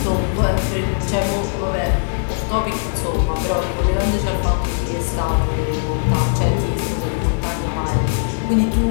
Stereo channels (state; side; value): silent; right; digital silence